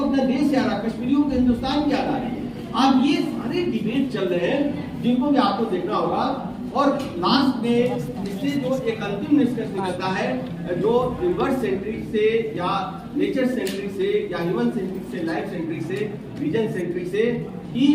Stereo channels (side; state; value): both; identical; correlation 1.00